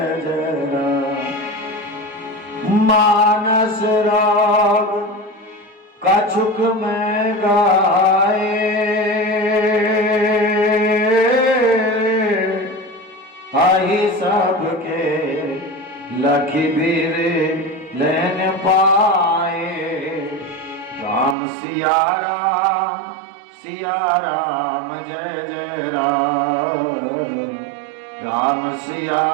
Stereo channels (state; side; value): drops out; left; at 21.4 s